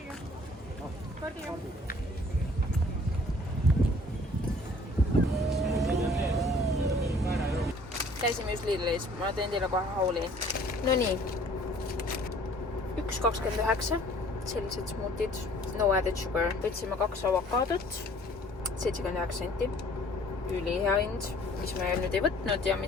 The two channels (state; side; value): normal; both; correlation 0.55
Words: Käisime just Lidlis, ma teen teile kohe hauli. No nii, 1,29, sellised smootid, no added sugar. Võtsime 2 avokaadot, 79 senti, ülihea hind, mis me nüüd ei võtnud ja